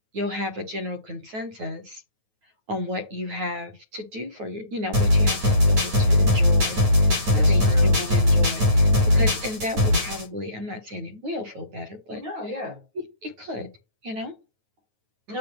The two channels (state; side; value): late; left; 9.3 ms